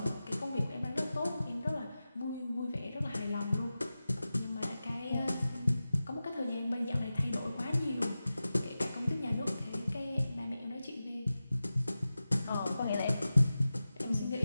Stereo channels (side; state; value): both; inverted; correlation -0.94